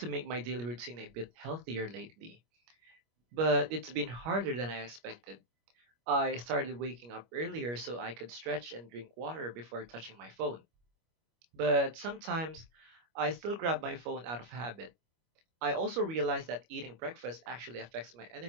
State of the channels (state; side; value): late; left; 25 ms